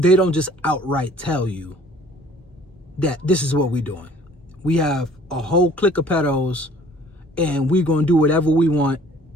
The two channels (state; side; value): normal; both; correlation 0.54